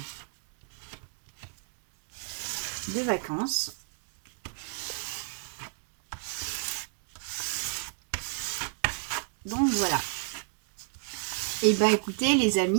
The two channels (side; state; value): left; silent; 57 dB below the other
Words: de vacances. Donc voilà. Et ben écoutez les